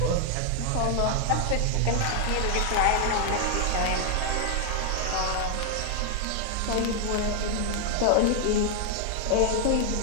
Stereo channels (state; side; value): different; both; correlation 0.00